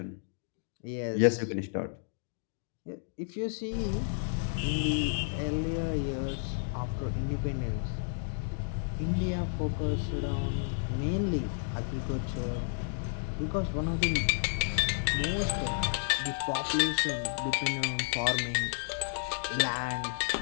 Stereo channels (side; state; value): right; silent; digital silence